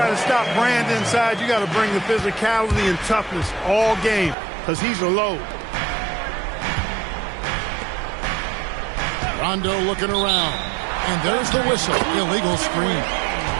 to stop Brand inside, you got to bring the physicality and toughness all game because he's a load. Rondo looking around. And there's the whistle. Illegal screen.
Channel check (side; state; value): left; drops out; at 4.4 s